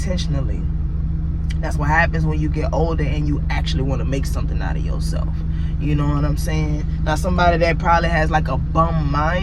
That's what happens when you get older and you actually want to make something out of yourself. You know what I'm saying? Now, somebody that probably has a bum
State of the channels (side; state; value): both; identical; correlation 1.00